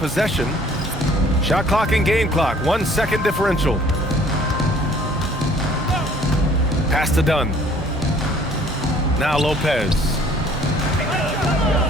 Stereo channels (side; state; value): both; normal; correlation 0.56